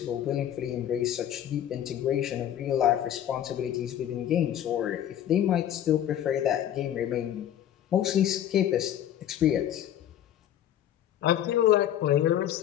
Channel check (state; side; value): quieter; right; 11.0 dB